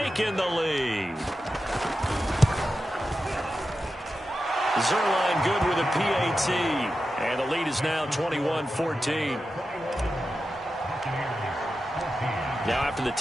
the lead. Zuerlein good with a PAT. And the lead is now 21-14. Now after the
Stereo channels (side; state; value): both; normal; correlation 0.91